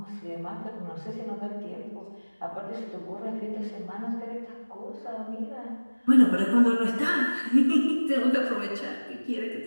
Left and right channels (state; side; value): inverted; both; correlation -1.00